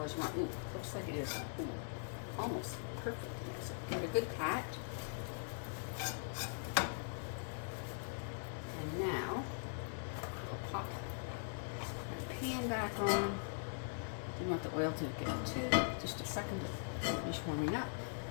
as you want. Ooh, looks like it is almost perfect in there. So give it a good pat. And now we'll pop my pan back on. You want the oil to get to just a second to finish warming up.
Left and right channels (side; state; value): right; silent; digital silence